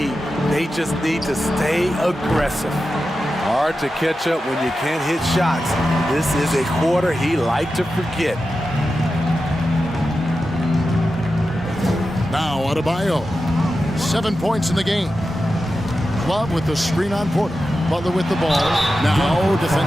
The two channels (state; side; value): normal; both; correlation 0.91